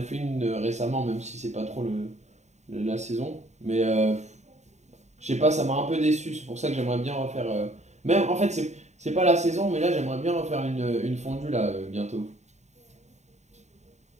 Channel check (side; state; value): left; late; 0.33 ms